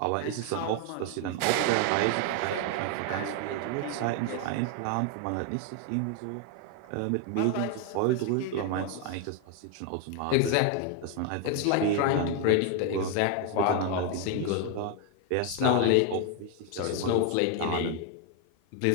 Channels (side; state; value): both; different; correlation 0.01